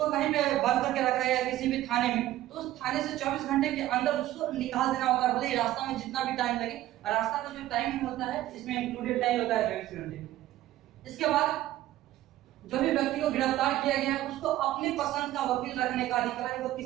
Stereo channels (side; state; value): left; quieter; 14.5 dB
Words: कहीं पे बंद करके रखा है किसी भी थाने में, तो उस थाने से 24 घंटे के अंदर उसको निकाल देना होता है, भले ही रास्ता में जितना भी टाइम लगे। रास्ता का जो टाइम होता है इसमें इंक्लूडेड टाइम होता है 24 घंटे। इसके बाद जो भी व्यक्ति को गिरफ्तार किया गया है उसको अपने पसंद का वकील रखने का अधिकार है।